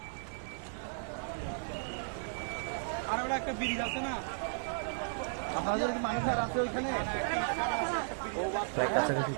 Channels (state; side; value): silent; left; 55 dB below the other